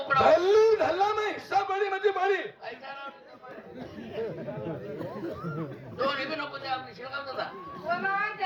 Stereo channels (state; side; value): identical; both; correlation 1.00